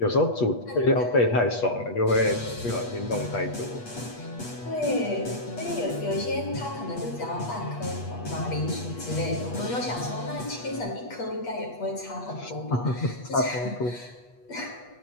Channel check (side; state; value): right; late; 8.3 ms